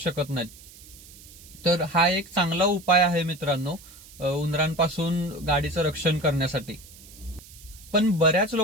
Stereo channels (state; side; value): noise; right; hiss, 20 dB below the sound